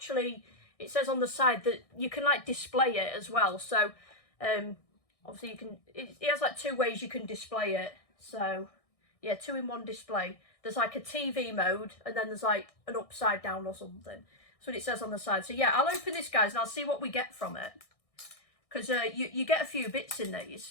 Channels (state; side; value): late; right; 1.6 ms